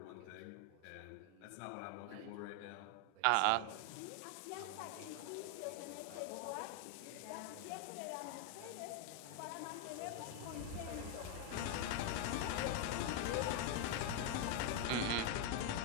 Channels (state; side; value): different; both; correlation 0.00